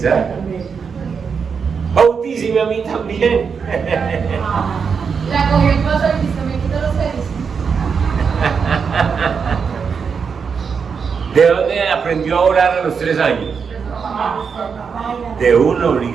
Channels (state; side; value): quieter; left; 6.0 dB